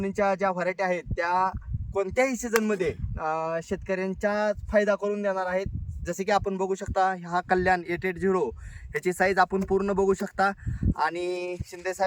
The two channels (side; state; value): both; identical; correlation 1.00